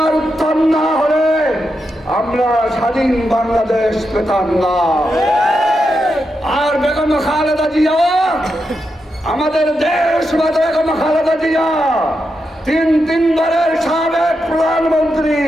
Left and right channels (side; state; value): both; normal; correlation 0.86